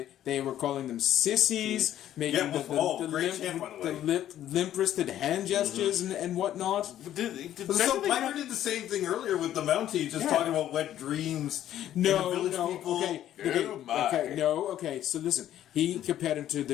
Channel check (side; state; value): right; quieter; 11.9 dB